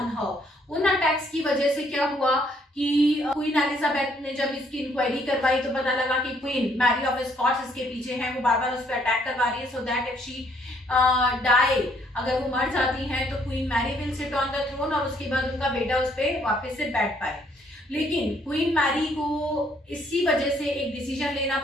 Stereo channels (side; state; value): both; normal; correlation 0.67